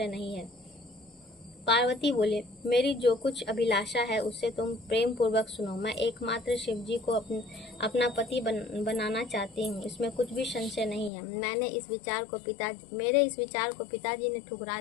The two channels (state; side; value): drops out; right; at 11.1 s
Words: नहीं है। पार्वती बोले, मेरी जो कुछ अभिलाषा है उससे तुम प्रेम पूर्वक सुनो। मैं एकमात्र शिव जी को अपना पति बनाना चाहती हूँ, इसमें कुछ भी संशय नहीं है। मेरे इस विचार को पिताजी ने ठुकरा